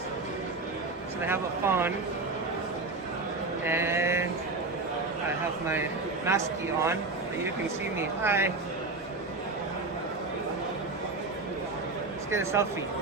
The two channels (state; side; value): quieter; left; 3.5 dB